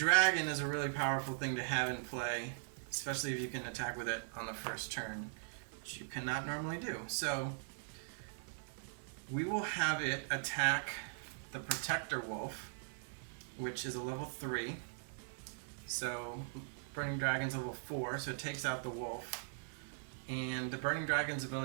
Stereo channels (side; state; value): left; silent; 51 dB below the other